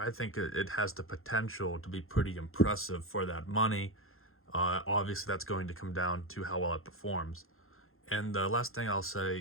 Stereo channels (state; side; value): late; right; 0.61 ms